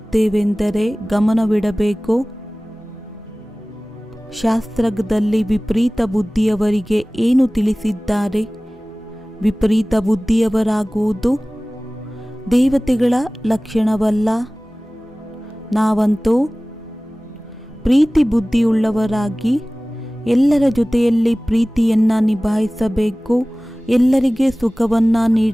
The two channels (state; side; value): normal; both; correlation 0.98